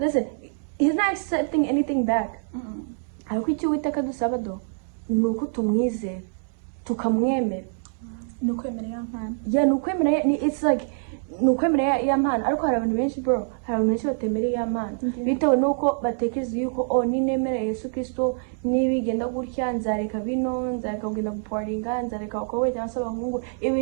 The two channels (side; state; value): left; silent; 62 dB below the other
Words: accepting anything back. Ariko icyo Uwiteka dusaba nuko tumwizera tukamwemera nukwemera ya mpano. Nukwemera it's like nukwemera ya mpano. Ariko hari abantu benshi bro, hari abantu benshi batemera ya mpano bitewe nuko batekereza yuko ninemera Yesu Kristo nibigenda gutya nzareka bino, nzareka kugenda guparinga, nzareka abakobwa cyangwa se abahungu,